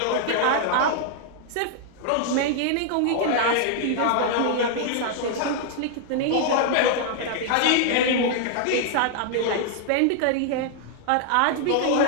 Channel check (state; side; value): different; both; correlation 0.00